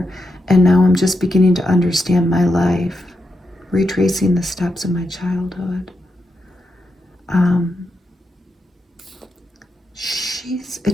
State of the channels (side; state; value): both; normal; correlation 0.85